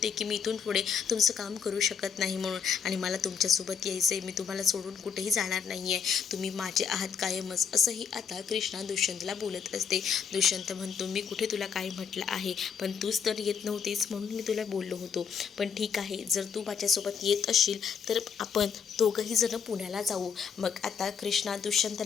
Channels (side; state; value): right; quieter; 6.8 dB